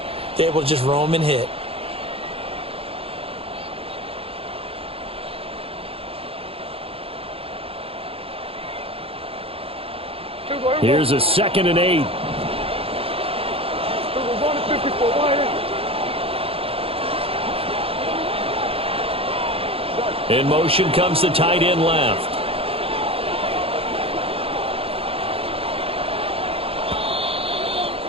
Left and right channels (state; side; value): late; left; 0.27 ms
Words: they're able to just roam and hit. Here's a 2nd and 8. In motion comes the tight end left.